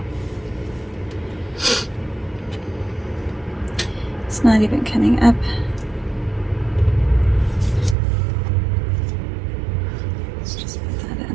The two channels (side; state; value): left; drops out; at 8.0 s